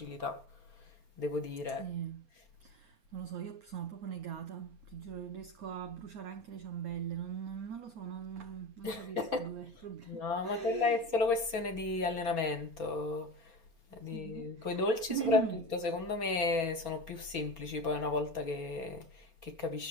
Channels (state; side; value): late; left; 4.3 ms